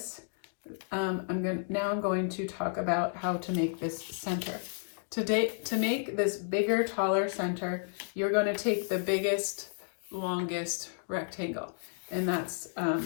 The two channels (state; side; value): silent; right; digital silence